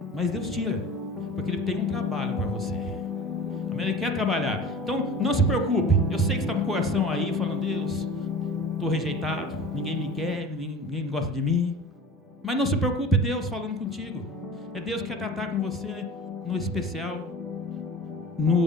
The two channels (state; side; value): normal; both; correlation 0.38